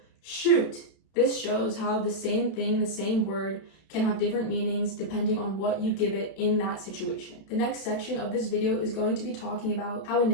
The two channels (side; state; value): right; late; 32 ms